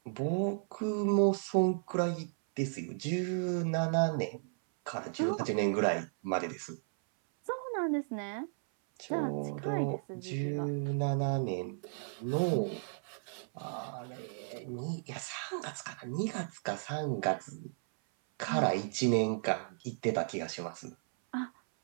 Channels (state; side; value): silent; left; 55 dB below the other